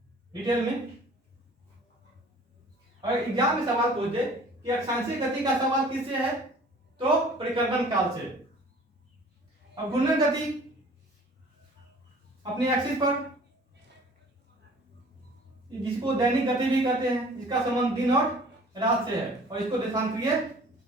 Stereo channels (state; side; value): normal; both; correlation 0.49